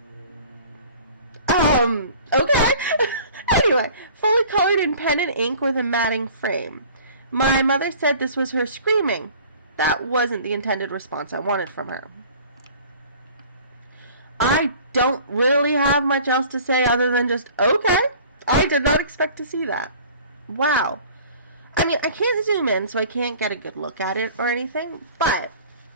Okay. Anyway, fully colored in pen and ink with a matting frame. My mother said this was her screaming. That wasn't the intended response I wanted from her. I don't really have much else to say other than just, okay. I did not expect to see that. Wow. I mean, I can't zoom in, so I can't get a good look at it or anything, but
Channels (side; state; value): both; inverted; correlation -0.47